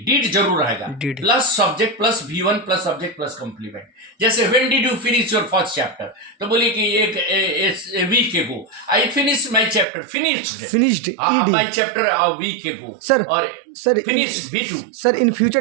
जरूर रहेगा. Plus subject plus V1 plus subject plus complement. जैसे when did you finish your first chapter? तो बोलिए कि एक week ago I finished my chapter. Finished my chapter a week ago. Sir finished V2. Sir in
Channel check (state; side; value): drops out; left; at 9.9 s